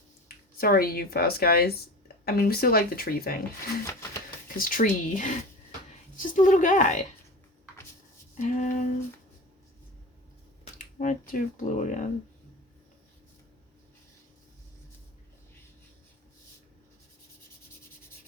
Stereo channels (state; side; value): normal; both; correlation 0.32